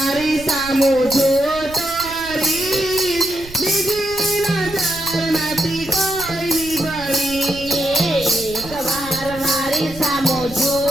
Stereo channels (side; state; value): right; noise; rumble, 17 dB below the sound